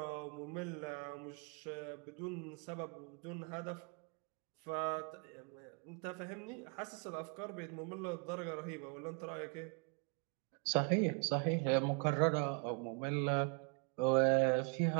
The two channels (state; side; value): quieter; left; 35.6 dB